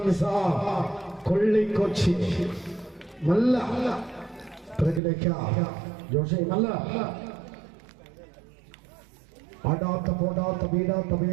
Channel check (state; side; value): drops out; left; at 5.0 s